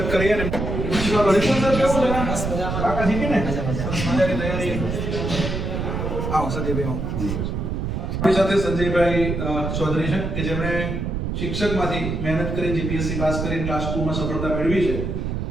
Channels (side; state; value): right; noise; rumble, 2 dB below the sound